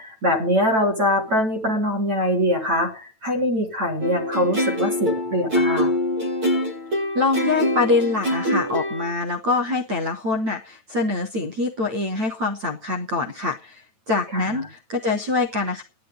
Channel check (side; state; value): left; late; 9.1 ms